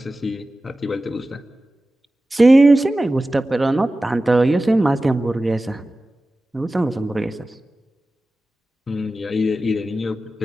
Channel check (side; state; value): both; normal; correlation 0.95